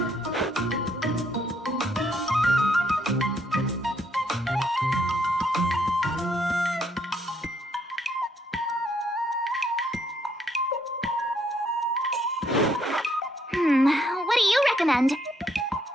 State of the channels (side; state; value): both; normal; correlation 0.71